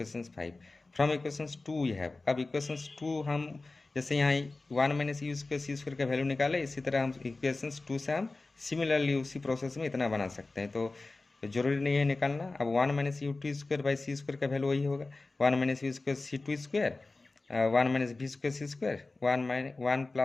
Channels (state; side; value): quieter; right; 3.4 dB